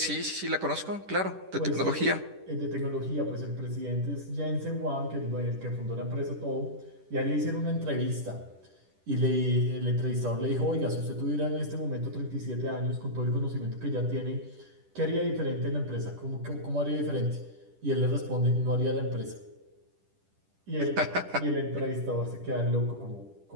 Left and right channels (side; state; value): left; late; 10 ms